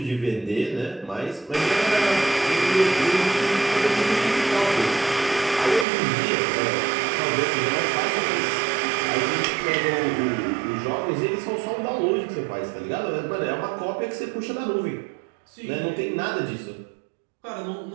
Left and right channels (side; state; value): left; drops out; at 5.9 s